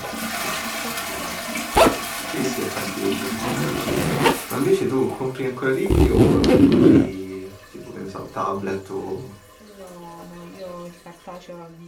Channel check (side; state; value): both; identical; correlation 1.00